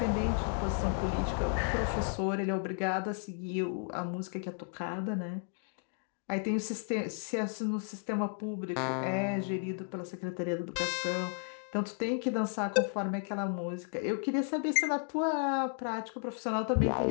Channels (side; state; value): right; silent; 55 dB below the other